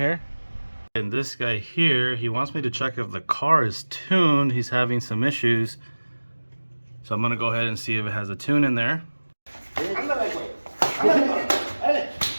And this guy here, he wants me to check if the car is tuned. He's having some issues, so I'm gonna go ahead and see if it has a tune in there.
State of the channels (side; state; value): both; inverted; correlation -1.00